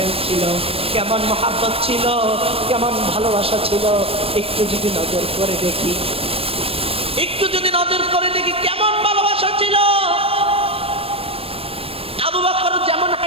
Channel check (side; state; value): left; late; 0.28 ms